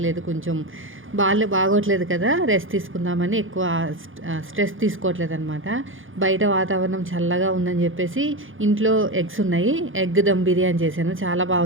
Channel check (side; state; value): left; late; 0.58 ms